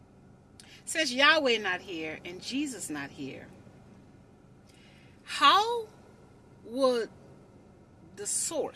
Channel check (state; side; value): identical; both; correlation 1.00